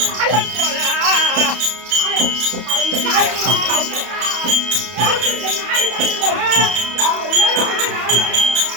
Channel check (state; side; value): late; left; 32 ms